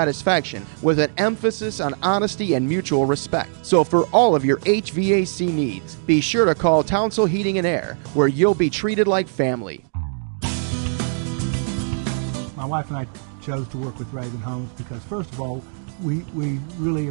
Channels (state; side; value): silent; left; digital silence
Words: with an emphasis on honesty and mutual respect. So for all of your HVAC needs, be sure to call Townsville Heating and Air, where you'll be treated like family. My wife and I chose to work with Ravin Homes because, first of all, we really